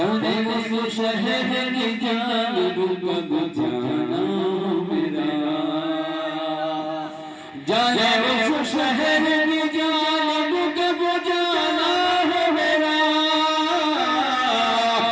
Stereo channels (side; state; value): both; identical; correlation 1.00